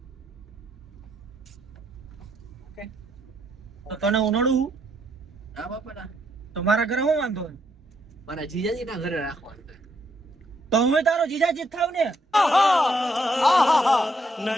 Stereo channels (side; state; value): both; normal; correlation 0.74